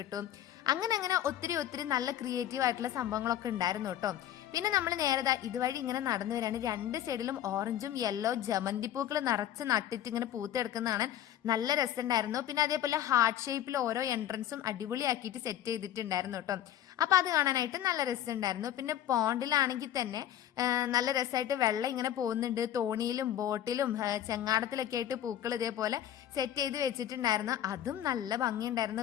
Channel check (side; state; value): right; quieter; 11.5 dB